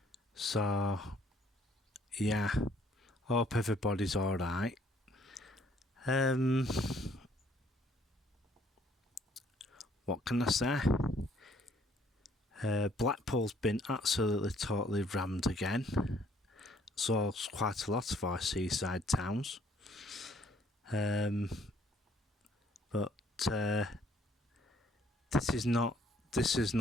So, yeah, hope everybody's alright. What can I say? Blackpool's been absolutely totally rammed again. So it's quite a lot of our seaside towns. But this is not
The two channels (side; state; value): both; normal; correlation 0.63